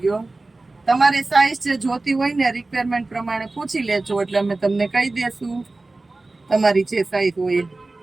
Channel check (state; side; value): quieter; left; 3.2 dB